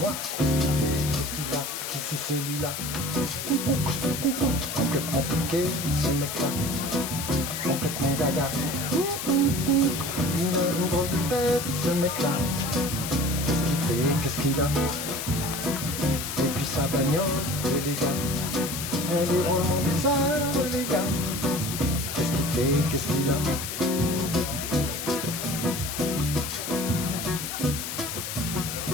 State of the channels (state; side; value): noise; left; hiss, 5 dB below the sound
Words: qu'est-ce qu'il fait, qu'est-ce qu'il a, qui c'est celui-là? Complètement toqué, ce mec-là, complètement gaga. Il a une grosse tête, ce mec-là, qu'est-ce qu'il fait, qu'est-ce qu'il a? Et puis sa bagnole, les gars, elle est vraiment bizarre, les gars. Qu'est-ce qu'il fait, qu'est-ce qu'il a?